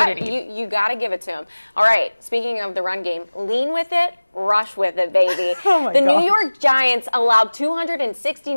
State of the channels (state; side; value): inverted; both; correlation -1.00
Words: You got to give it to him. All right, speaking of the run game, lean with it, rush with it, baby. The New York Giants allowed